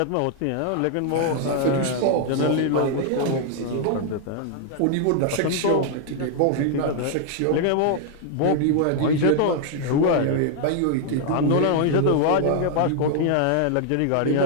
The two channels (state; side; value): different; both; correlation 0.00